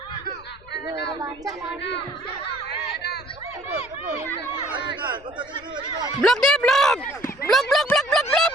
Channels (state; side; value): noise; left; rumble, 24 dB below the sound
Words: Blok dia, blok. Blok.